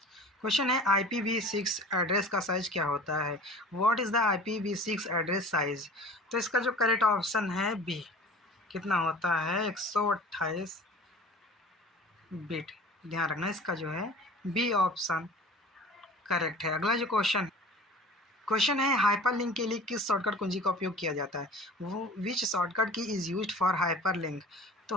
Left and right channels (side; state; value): both; normal; correlation 0.42